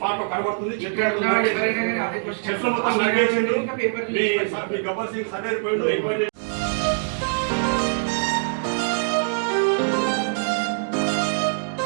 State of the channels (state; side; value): silent; left; digital silence